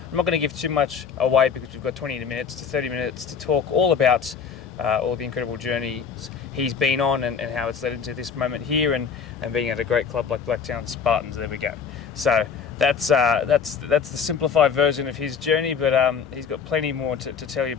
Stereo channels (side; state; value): right; quieter; 6.5 dB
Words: I'm not going to give too much away because we've got 20 minutes to 30 minutes to talk all about all the incredible journeys he's been on and how it's led into this moment here and being at a great club like Blacktown Spartans. There we go. So that's the simplified version of his journey, but he's got plenty more to tell you